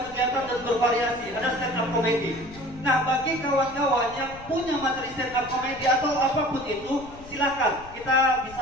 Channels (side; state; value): left; noise; rumble, 19 dB below the sound